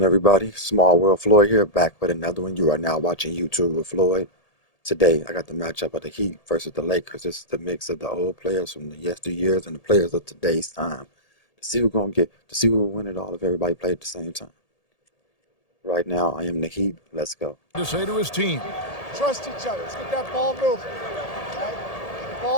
everybody? Small World Floyd here, back with another one. You are now watching YouTube with Floyd. Today, I got the matchup of the Heat versus the Lakers. This is the mix of the old players from the yesteryears and the players of today's time. To see who's gonna who will win it all if everybody played at the same time. Right now, I am the Heat. Let's go. To say to his team, trust each other. Let's get that ball moving. Right?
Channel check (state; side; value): late; right; 1.8 ms